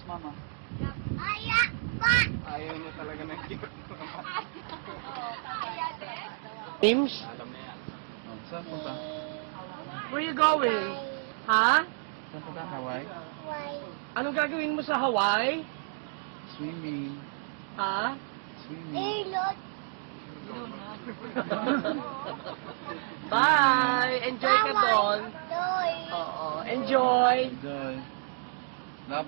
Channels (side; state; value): left; silent; digital silence